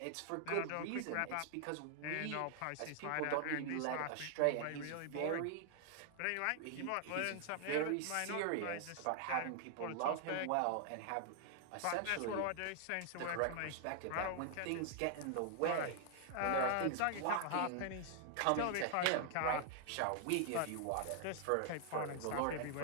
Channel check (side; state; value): both; different; correlation 0.00